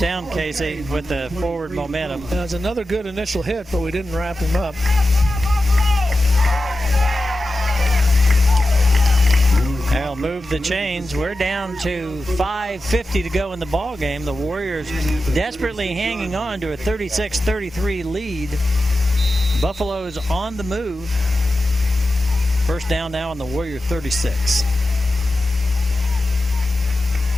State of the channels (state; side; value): normal; both; correlation 0.92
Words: down, Casey, with the forward momentum. That was another good initial hit, but we didn't wrap him up. They'll move the chains. We're down to 5:50 to go in the ball game. The Warriors desperately hanging on to a 36-33 lead. Buffalo's on the move. First down now on the Warrior 36.